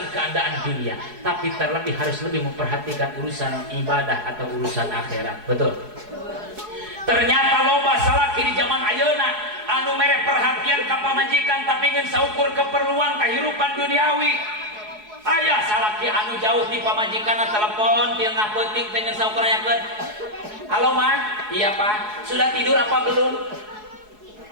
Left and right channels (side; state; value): left; late; 4.7 ms